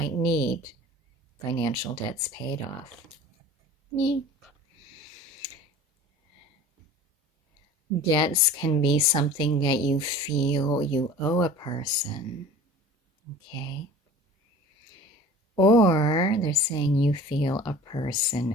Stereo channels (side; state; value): both; normal; correlation 0.42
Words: need financial debts paid off. Me. Debts can be something that you feel you owe a person, okay? Or they're saying you feel a